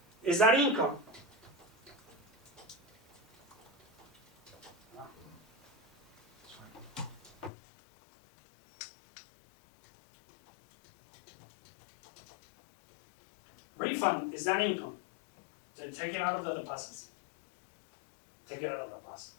Is that income? Refund, is that income? Then take it out of the deposits. Take it out of the deposit.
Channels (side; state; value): right; drops out; at 7.5 s